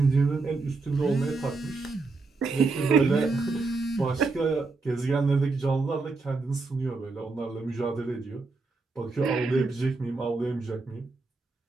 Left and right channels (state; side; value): quieter; left; 3.8 dB